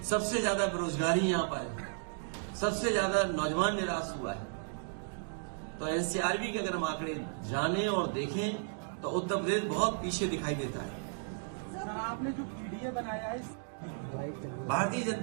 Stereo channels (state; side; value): silent; left; digital silence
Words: सबसे ज्यादा बेरोजगारी यहाँ पर है, सबसे ज्यादा नौजवान निराश हुआ है। तो एनसीआरबी के अगर हम आंकड़े जाने और देखें तो उत्तर प्रदेश बहुत पीछे दिखाई देता है। सर, आपने जो पीडीए बनाया है, भारतीय